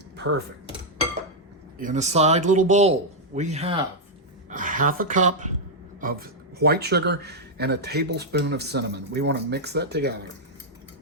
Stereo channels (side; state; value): both; normal; correlation -0.04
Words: Perfect. In a side little bowl, we have a half a cup of white sugar and a tablespoon of cinnamon. We want to mix that together.